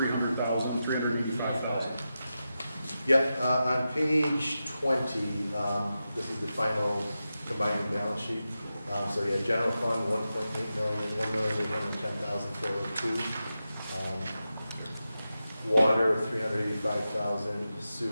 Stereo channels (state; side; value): inverted; both; correlation -0.91